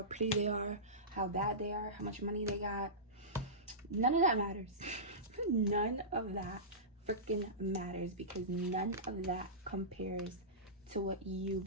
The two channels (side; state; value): both; normal; correlation -0.19